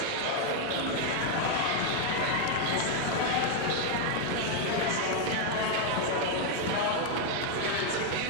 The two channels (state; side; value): different; both; correlation 0.00